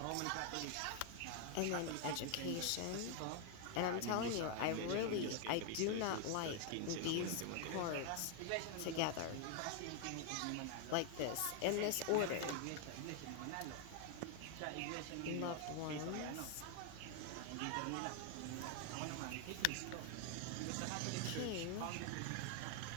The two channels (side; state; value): both; different; correlation 0.00